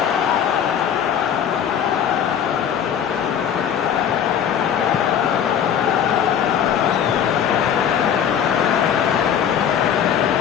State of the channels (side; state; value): right; quieter; 8.7 dB